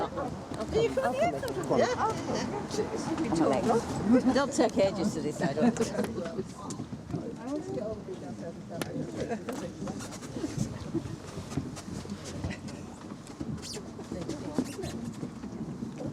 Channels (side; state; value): both; identical; correlation 1.00